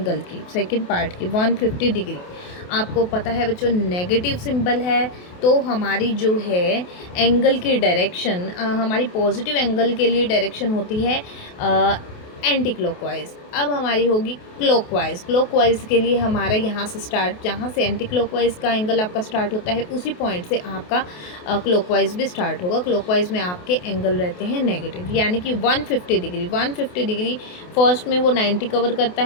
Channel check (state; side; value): late; right; 28 ms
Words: की, सेकंड पार्ट की 150 डिग्री। आपको पता है बच्चों नेगेटिव सिंबल है तो हमारी जो है एंगल की डायरेक्शन, हमारी पॉजिटिव एंगल के लिए डायरेक्शन होती है एंटी क्लॉकवाइज। अब हमारी होगी क्लॉकवाइज। क्लॉकवाइज के लिए हमारा यहाँ से स्टार्ट, जहाँ से एंटी क्लॉकवाइज का एंगल आपका स्टार्ट होता है उसी पॉइंट से आपका क्लॉकवाइज भी स्टार्ट होगा। क्लॉकवाइज में आपके एंगल रहते हैं नेगेटिव, यानी कि 150 डिग्री। 150 डिग्री फर्स्ट में वो 90 कवर करता